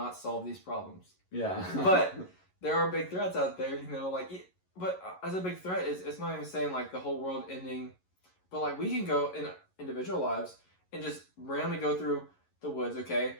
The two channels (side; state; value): right; late; 11 ms